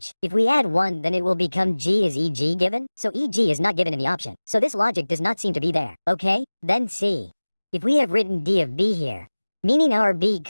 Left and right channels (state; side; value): inverted; both; correlation -1.00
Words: If we add 1, then it will become G. Is EG given? So EG is not given in the option. So this logic does not seem to be there, okay? Then C. If we have written D of B here, meaning our B